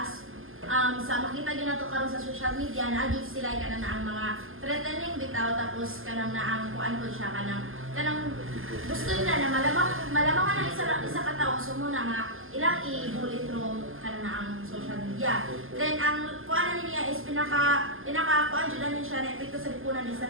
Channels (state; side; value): late; left; 0.59 ms